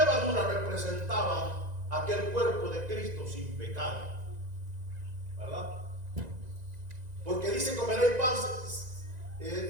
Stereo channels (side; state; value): left; late; 1.9 ms